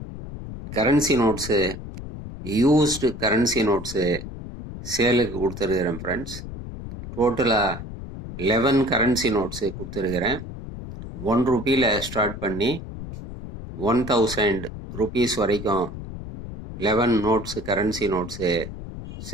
currency notes, used currency notes சேலுக்கு கொடுத்துருக்கிறேன் friends. டோட்டலாக 11 கரன்சி நோட்ஸு கொடுத்துருக்கிறேன். ₹1 ஸ்டார்ட் பண்ணி 1000 rupees வரைக்கும் 11 நோட்ஸு கரன்சி நோட்ஸு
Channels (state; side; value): noise; left; rumble, 10 dB below the sound